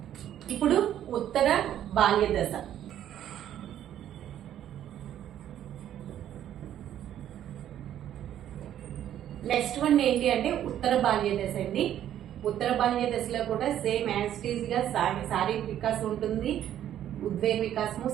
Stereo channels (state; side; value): quieter; left; 11.1 dB